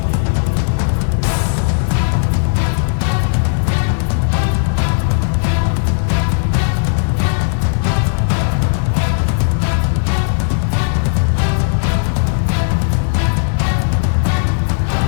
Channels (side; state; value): right; silent; digital silence